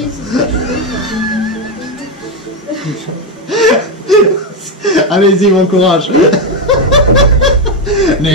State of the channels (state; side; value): normal; both; correlation 0.07